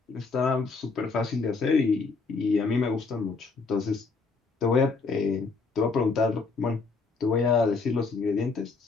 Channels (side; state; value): right; quieter; 4.3 dB